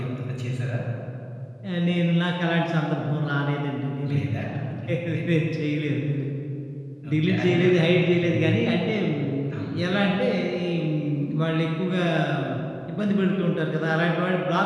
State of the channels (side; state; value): both; identical; correlation 1.00